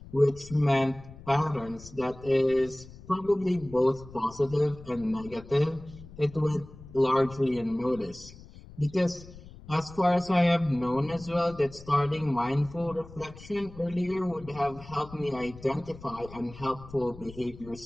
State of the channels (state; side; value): noise; left; rumble, 18 dB below the sound